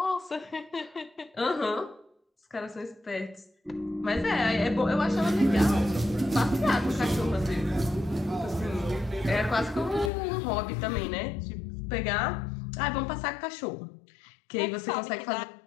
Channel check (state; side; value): drops out; right; at 10.1 s